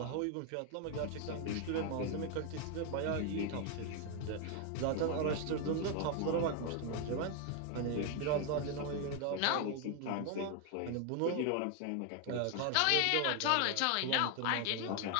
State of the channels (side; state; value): both; different; correlation 0.01